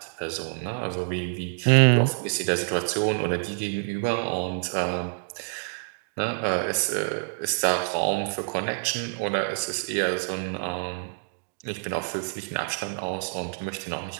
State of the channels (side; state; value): left; silent; digital silence